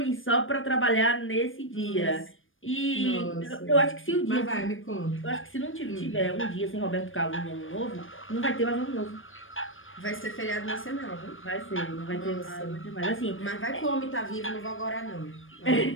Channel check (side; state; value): right; late; 0.58 ms